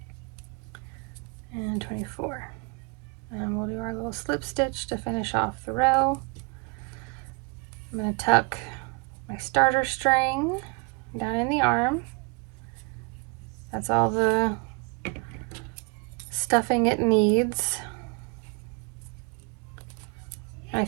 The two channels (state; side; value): quieter; left; 30.9 dB